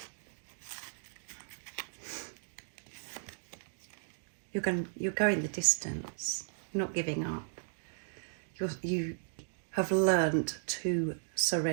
You're going the distance. You're not giving up. You have learned to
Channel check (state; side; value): silent; left; digital silence